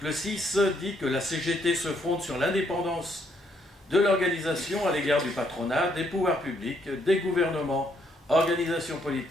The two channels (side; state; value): both; normal; correlation 0.72